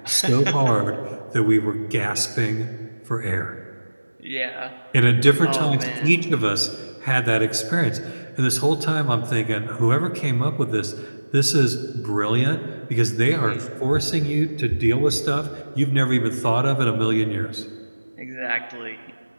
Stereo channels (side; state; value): both; inverted; correlation -1.00